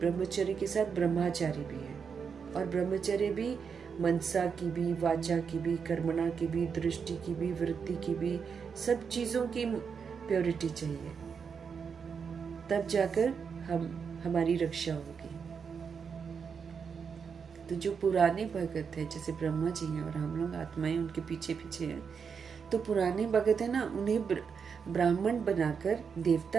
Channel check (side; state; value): left; quieter; 6.2 dB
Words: के साथ ब्रह्मचारी भी है। और ब्रह्मचर्य भी मनसा की भी, वाचा की भी, कर्मणा की भी, दृष्टि की भी, वृत्ति की भी, सब चीजों की प्योरिटी चाहिए, तब जाकर हमारी रक्षा होगी। तो जो पुराने भगत है, जैसे ब्रह्मा जी हैं और हम लोग आत्माएं उनके पीछे पीछे हैं, तो पुराने भगत है ना, उन्हें ब्राह्मण बनाकर